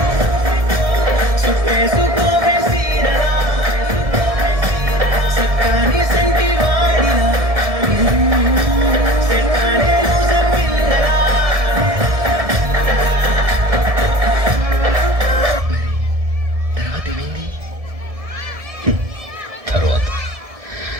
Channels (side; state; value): left; late; 1.7 ms